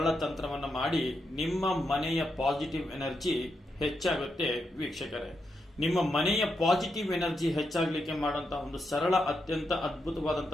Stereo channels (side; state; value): both; normal; correlation 0.84